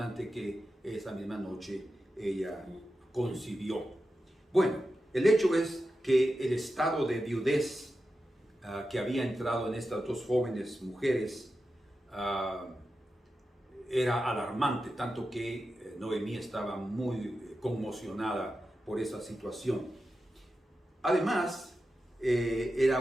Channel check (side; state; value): both; normal; correlation 0.91